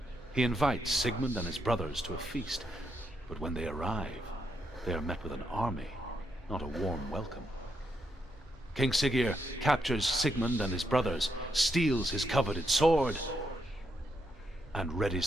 He invites Sigmund and his brothers to a feast, but when they arrive, they are met with an army, not a warm welcome. King Siggeir captures Sigmund and his brothers, steals his coveted sword, and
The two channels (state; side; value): normal; both; correlation 0.80